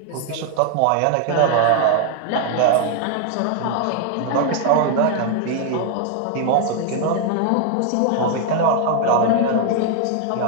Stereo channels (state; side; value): different; both; correlation 0.00